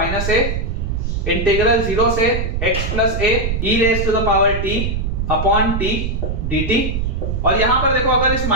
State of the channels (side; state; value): right; noise; rumble, 2 dB below the sound